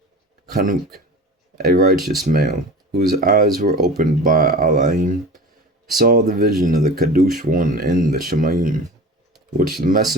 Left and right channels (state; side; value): normal; both; correlation 0.35